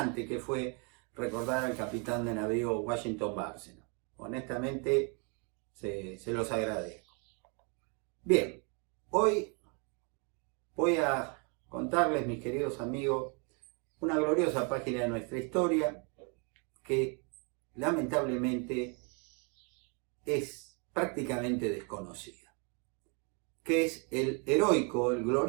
que fue recordar al capitán de navío Washington Bárcena. Honestamente, se los agradezco. Bien, hoy voy a contarles, mis queridos amigos, una gloriosa página de nuestra historia que lamentablemente es prácticamente desconocida, que es el heroico, el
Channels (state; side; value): quieter; left; 35.7 dB